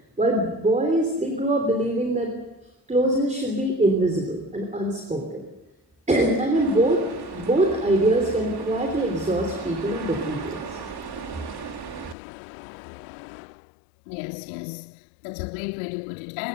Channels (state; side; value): drops out; right; at 12.2 s